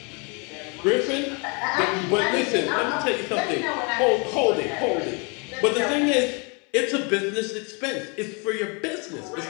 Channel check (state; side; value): quieter; right; 33.1 dB